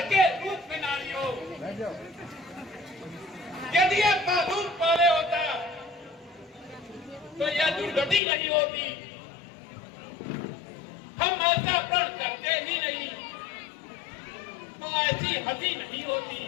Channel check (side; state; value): right; drops out; at 8.2 s